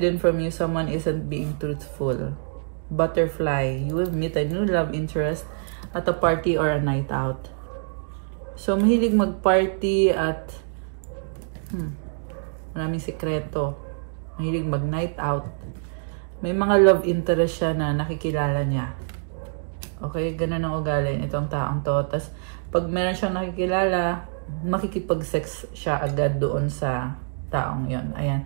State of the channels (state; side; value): silent; left; digital silence